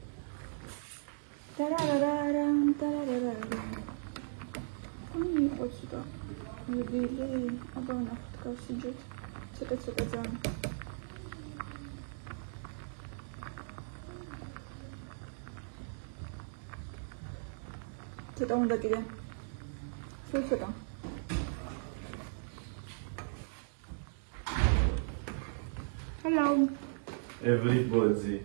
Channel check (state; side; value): silent; left; digital silence